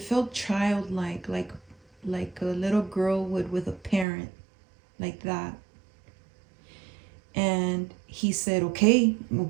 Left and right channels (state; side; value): drops out; left; at 4.0 s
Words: felt childlike, like a little girl would with a parent, like that. And he said, "Okay, well,